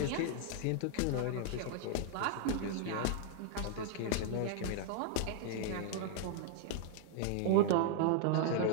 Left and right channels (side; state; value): both; different; correlation 0.00